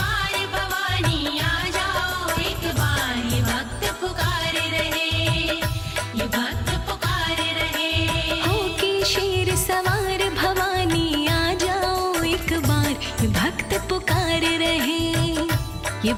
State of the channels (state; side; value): identical; both; correlation 1.00